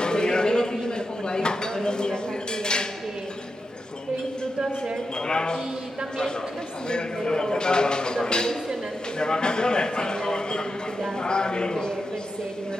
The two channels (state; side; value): normal; both; correlation 0.88